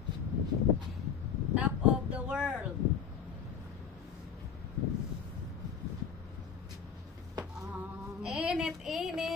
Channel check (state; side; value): quieter; right; 7.1 dB